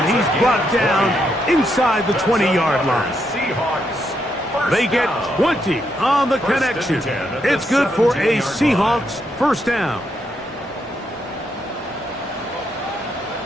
He's brought down inside the 20-yard line. They get 20 on the connection. It's good for a Seahawks 1st down.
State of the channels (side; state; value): both; normal; correlation 0.79